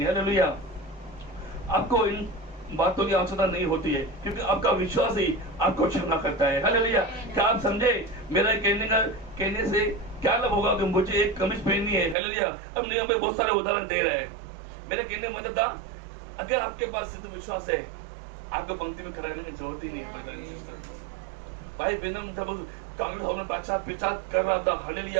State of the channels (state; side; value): drops out; left; at 12.2 s